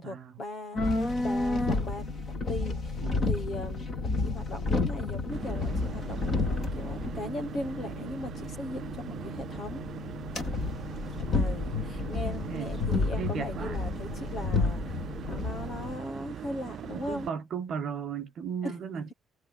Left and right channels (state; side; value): normal; both; correlation 0.60